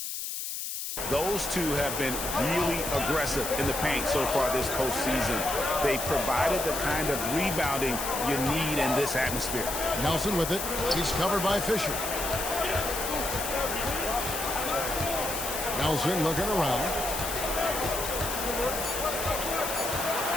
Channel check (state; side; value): noise; left; hiss, 4 dB below the sound